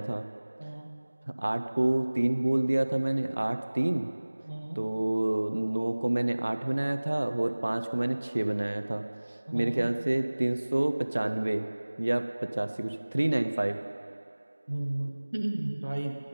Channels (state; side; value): inverted; both; correlation -1.00